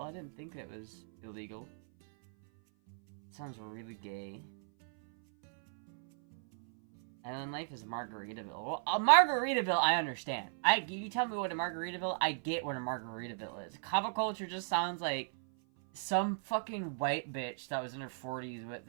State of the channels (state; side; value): silent; left; 54 dB below the other